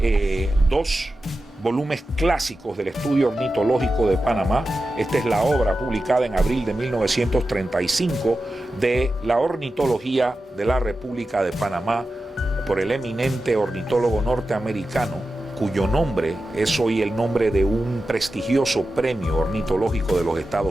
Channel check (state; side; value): normal; both; correlation 0.92